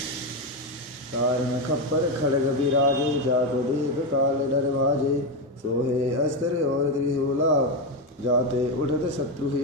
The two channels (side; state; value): both; normal; correlation 0.10